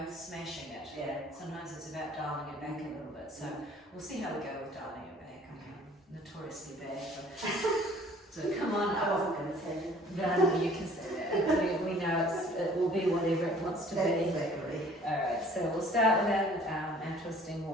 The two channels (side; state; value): both; normal; correlation 0.53